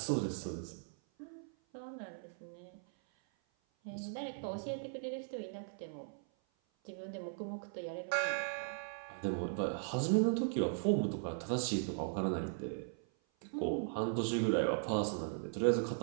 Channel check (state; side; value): silent; left; 52 dB below the other